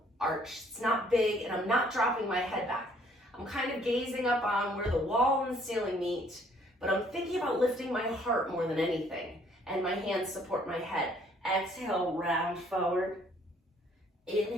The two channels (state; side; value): normal; both; correlation 0.62